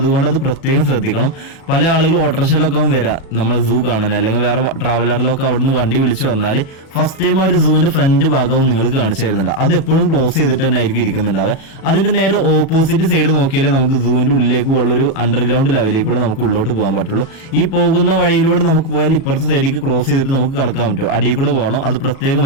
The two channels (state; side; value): late; right; 37 ms